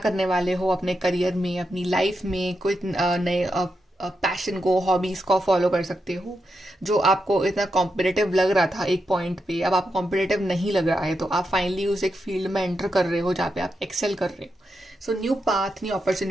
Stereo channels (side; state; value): both; normal; correlation 0.86